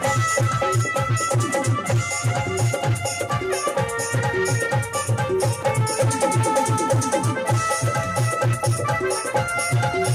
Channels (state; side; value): identical; both; correlation 1.00